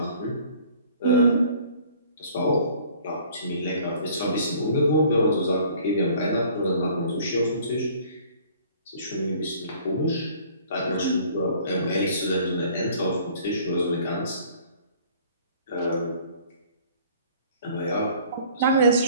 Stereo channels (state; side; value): inverted; both; correlation -0.53